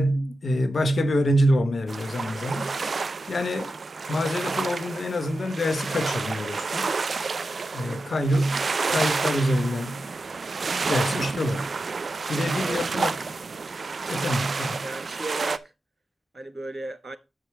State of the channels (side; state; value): both; normal; correlation 0.90